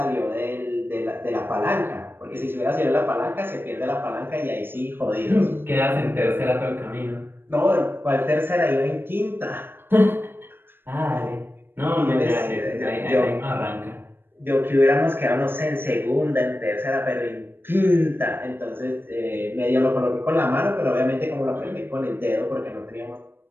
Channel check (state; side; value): late; left; 0.10 ms